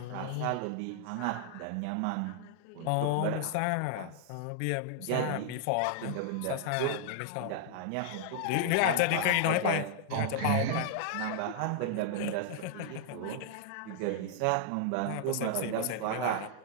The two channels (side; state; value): both; different; correlation -0.01